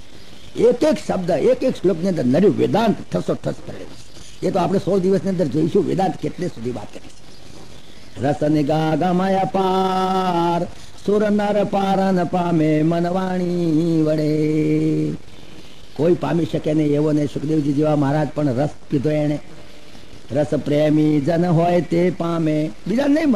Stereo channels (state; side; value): identical; both; correlation 1.00